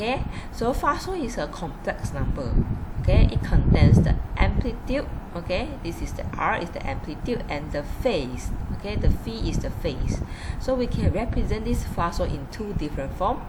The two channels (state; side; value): identical; both; correlation 1.00